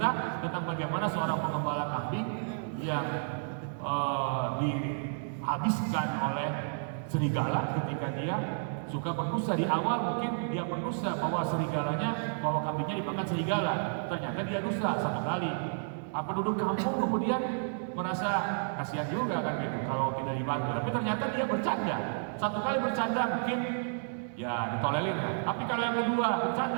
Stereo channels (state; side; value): silent; left; digital silence